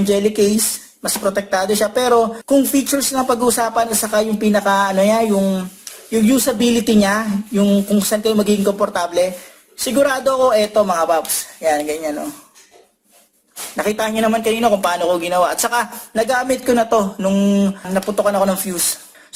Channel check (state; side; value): identical; both; correlation 1.00